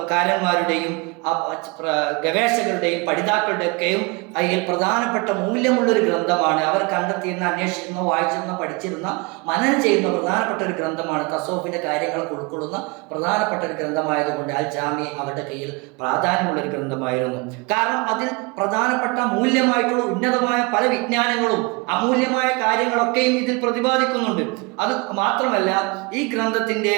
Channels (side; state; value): left; quieter; 28.0 dB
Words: ഗവേഷകരുടെയും പഠിതാക്കളുടെയൊക്കെയും അതിൽ പ്രധാനപ്പെട്ട മൂല്യമുള്ളൊരു ഗ്രന്ഥമാണ്. അവർ കണ്ടെത്തിയിരുന്ന, അന്വേഷിച്ചിരുന്ന, വായിച്ചിരുന്ന, പഠിച്ചിരുന്ന, മനനം ചെയ്യുന്ന പ്രധാനപ്പെട്ട ഒരു ഗ്രന്ഥമാണ്. തസൗഫിന്റെ കാര്യങ്ങളൊക്കെ ഉൾക്കൊള്ളുന്ന പ്രധാനപ്പെട്ട ഒരു ഗ്രന്ഥമായതുകൊണ്ട് അൽ ജാമി അവരുടെ കയ്യിൽ പ്രാധാന്യമുള്ളൊരു ഗ്രന്ഥമായിരുന്നു. കാരണം അതിൽ പ്രധാനപ്പെട്ട മൂല്യമായിട്ടുള്ള ഉന്നതമായ പല വിജ്ഞാനങ്ങളും അമൂല്യമായ കാര്യങ്ങളൊക്കെയും ഇതിൽ പ്രതിപാദിക്കുന്നുണ്ട്. അത് മാത്രമല്ല, ഈ ഗ്രന്ഥത്തിന്റെ